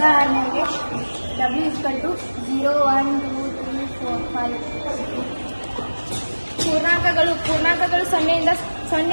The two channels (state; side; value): inverted; both; correlation -1.00